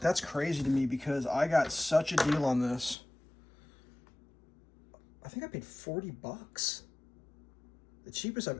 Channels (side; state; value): right; drops out; at 3.0 s